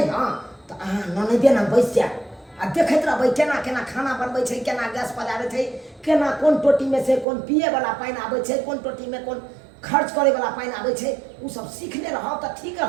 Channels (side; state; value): left; drops out; at 7.2 s